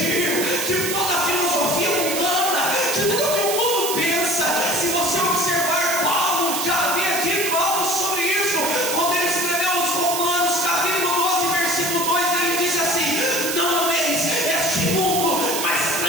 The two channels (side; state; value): right; noise; hiss, 2 dB below the sound